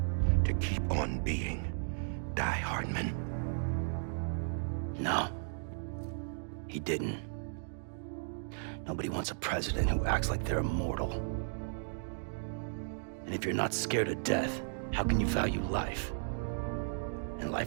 To keep on being Die Hardman. No. He didn't. Nobody wants a president who acts like they're immortal. And if you're not scared of death, how can you value life? And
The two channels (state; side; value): silent; left; digital silence